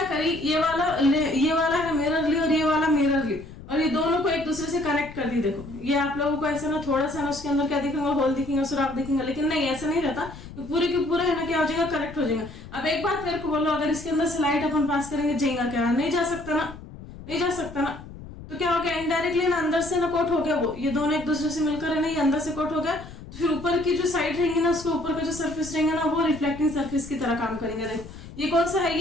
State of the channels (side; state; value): left; noise; rumble, 15 dB below the sound